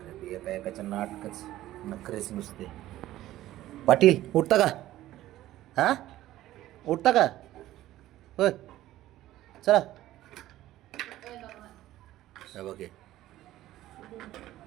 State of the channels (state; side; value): quieter; left; 14.7 dB